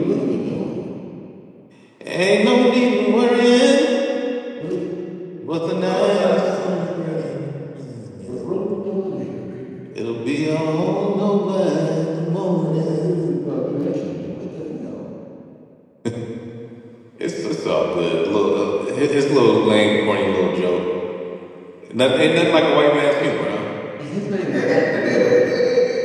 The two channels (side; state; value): both; identical; correlation 1.00